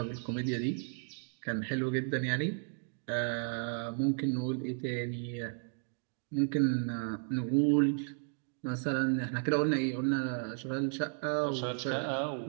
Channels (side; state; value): left; silent; 55 dB below the other